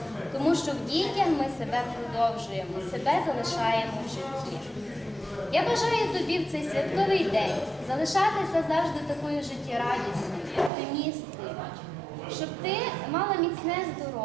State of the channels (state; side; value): drops out; left; at 10.7 s